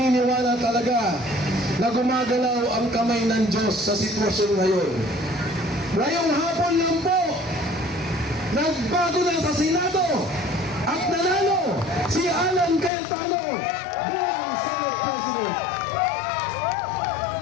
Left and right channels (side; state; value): right; drops out; at 12.9 s